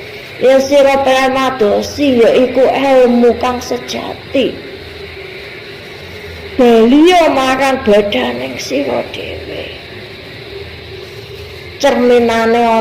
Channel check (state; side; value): identical; both; correlation 1.00